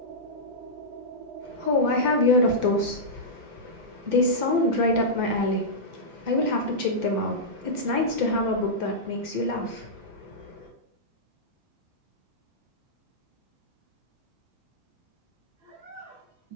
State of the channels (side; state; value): left; late; 5.9 ms